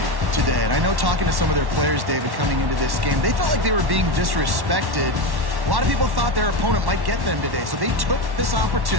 today, and I know talking to some of their players, David, coming into this game, they felt like they were being disrespected. A lot of people thought their opponent might get them today, so they took this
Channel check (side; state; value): left; late; 1.1 ms